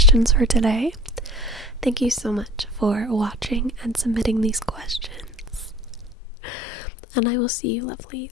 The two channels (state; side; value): drops out; right; at 6.2 s